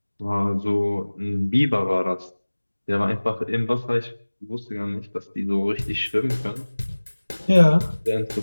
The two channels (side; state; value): both; inverted; correlation -1.00